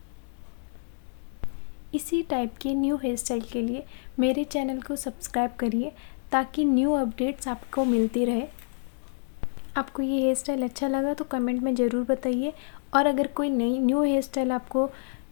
इसी टाइप के न्यू हेयर स्टाइल के लिए मेरे चैनल को सब्सक्राइब करिए ताकि न्यू अपडेट्स आपको मिलती रहे। आपको ये हेयर स्टाइल अच्छा लगा तो कमेंट में ज़रूर बताइए, और अगर कोई नई न्यू हेयर स्टाइल आपको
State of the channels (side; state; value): right; silent; digital silence